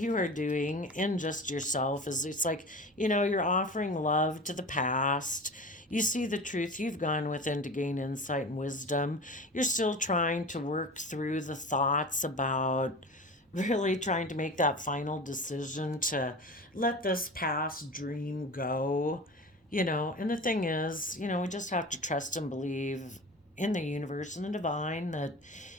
are doing in just yourself is it's like, you're offering love to the past. You see the truth. You've gone within to gain insight and wisdom. You're still trying to work through the thoughts about really trying to make that final decision to let this past dream go. And the thing is, we just have to trust and believe in the universe and the divine that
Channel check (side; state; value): both; normal; correlation 0.33